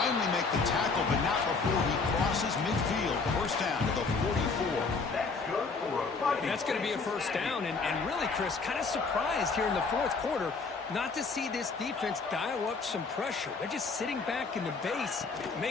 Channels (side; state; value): right; quieter; 4.4 dB